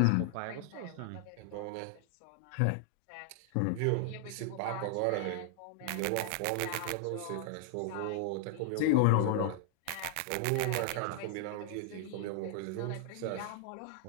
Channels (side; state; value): both; different; correlation -0.01